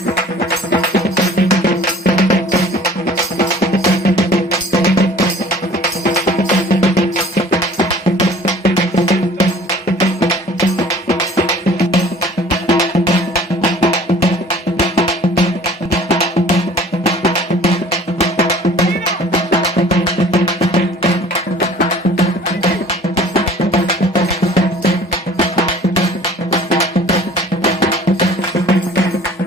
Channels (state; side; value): normal; both; correlation 0.49